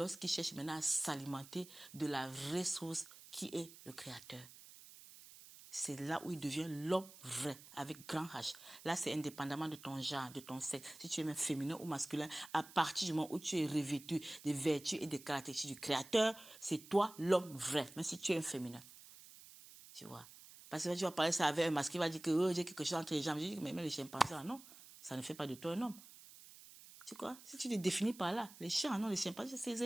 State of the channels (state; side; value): noise; right; hiss, 18 dB below the sound